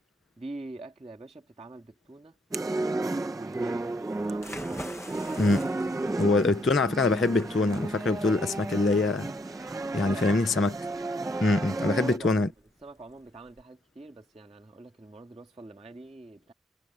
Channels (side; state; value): both; normal; correlation 0.71